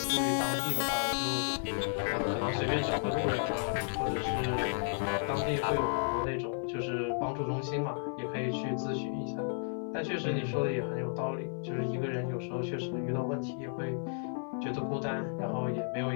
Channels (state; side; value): silent; right; digital silence